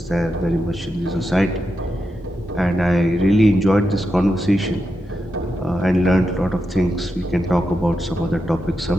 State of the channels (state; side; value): normal; both; correlation 0.87